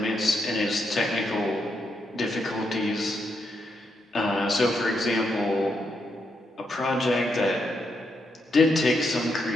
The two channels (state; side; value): normal; both; correlation 0.80